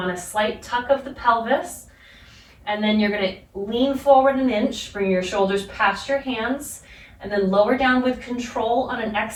a slight tuck of the pelvis. And then you're going to lean forward an inch, bring your shoulders past your hands, and then lower down with control on an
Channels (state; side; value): identical; both; correlation 1.00